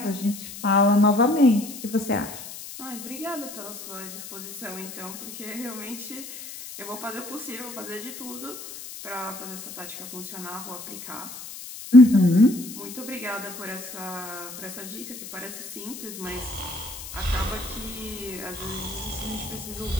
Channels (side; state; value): left; noise; hiss, 12 dB below the sound